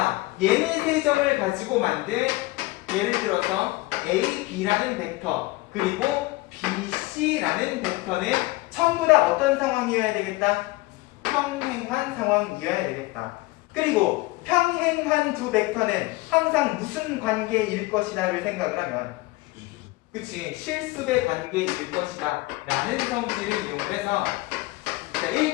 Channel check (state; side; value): quieter; right; 21.0 dB